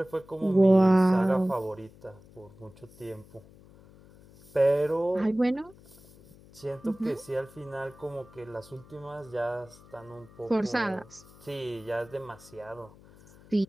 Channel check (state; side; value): noise; left; hum, 23 dB below the sound